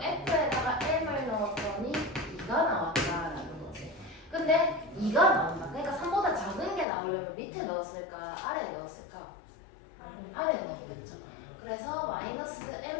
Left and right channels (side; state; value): right; drops out; at 6.9 s